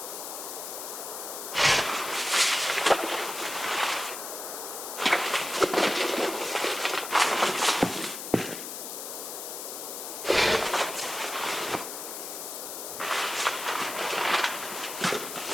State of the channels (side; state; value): left; noise; hiss, 7 dB below the sound